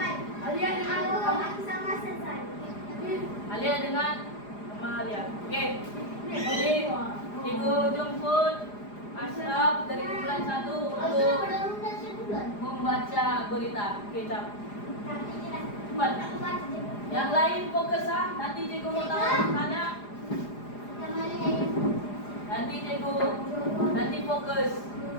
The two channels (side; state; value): right; late; 4.9 ms